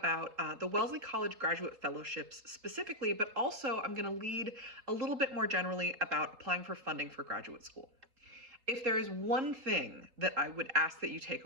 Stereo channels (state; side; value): late; left; 3.8 ms